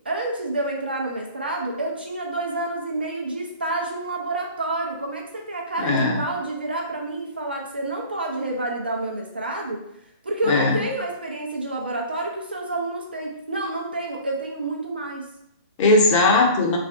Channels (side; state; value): both; inverted; correlation -0.39